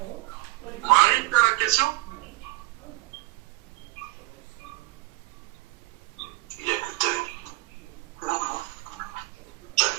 Marie, tu as la question?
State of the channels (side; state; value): left; quieter; 20.6 dB